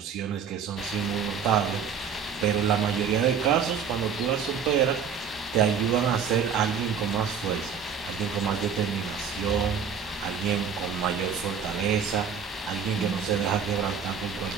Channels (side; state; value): left; quieter; 6.7 dB